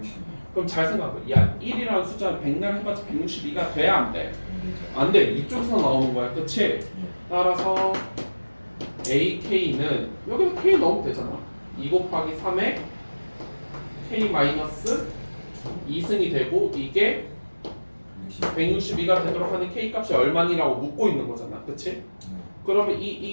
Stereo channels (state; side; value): inverted; both; correlation -1.00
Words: 그럼 잘 생각해. 야, 1이라는 숫자는 100날 해봤자 162가 돼야 안 돼? 안 돼. 이쪽에서 나오는 거야. 그치? 따라서 AK는 여기서 K 넣으면 되잖아. 2 곱하기 3에 K 마이너스 2승이 되고 이게 162가 되도록 하는 K 값이 얼마니라고 묻고 있는 거잖아. 그치? 그러면